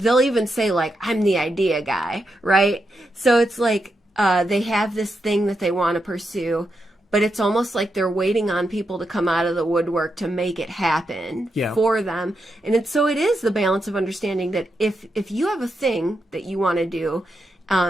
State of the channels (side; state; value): both; normal; correlation 0.85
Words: even say like, I'm the idea guy, right? So it's like they have this thing that they want to pursue, but it's almost like they're waiting on people to come out of the woodwork to make it happen for them. And it is the balance of understanding that if you have a thing that you want to do,